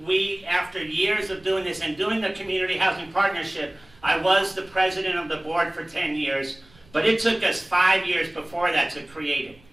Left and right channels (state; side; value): noise; right; rumble, 28 dB below the sound